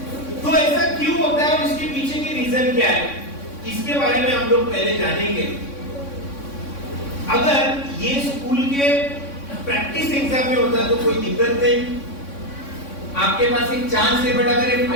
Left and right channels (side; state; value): right; late; 3.6 ms